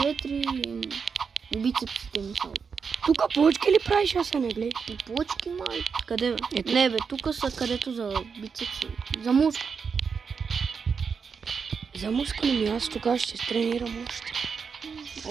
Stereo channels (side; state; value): left; quieter; 5.8 dB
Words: бицепсите ми са. Тук плочки ли правиш, Асене, гледай? И плочки, май. Къде, бе? Не, бе, тук са където за бицепси. За мускул. За мускули ми, аз тогава ще тренирам още.